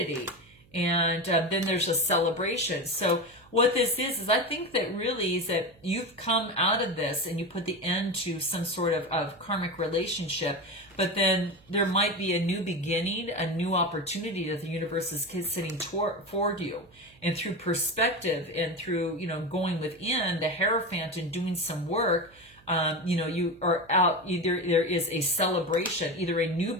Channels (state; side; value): noise; right; hum, 28 dB below the sound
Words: and then there's a celebration. So what this is I think that really is that you've come out of this and you put the end to some sort of karmic relationship, but then there might be a new beginning, a new opportunity that the universe is sitting toward you. And through perspective and through, going within the Hierophant and doing some work, you are out, there is a celebration, either a new